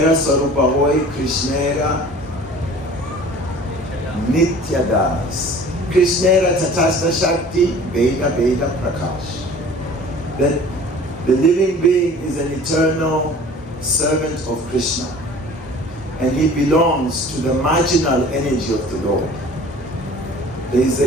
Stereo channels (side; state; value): both; normal; correlation 0.45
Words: Sarupa Hoy Krishnera Nityadas. Krishnera Tatasta Shakti Veda Veda Prakash. That the living being is an eternal servant of Krishna. And he belongs to the marginal energy of the Lord. There is